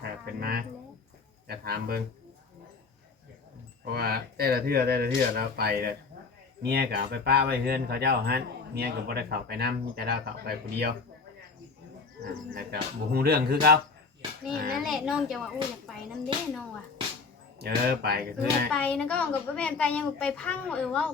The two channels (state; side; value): quieter; right; 4.5 dB